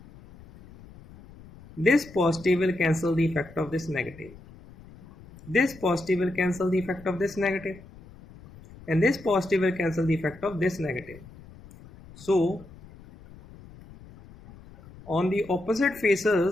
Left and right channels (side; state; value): left; noise; rumble, 20 dB below the sound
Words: This positive will cancel the effect of this negative. This positive will cancel the effect of this negative. And this positive will cancel the effect of this negative. So on the opposite